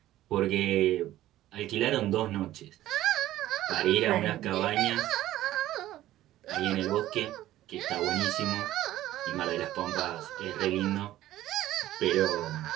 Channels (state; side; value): quieter; left; 14.3 dB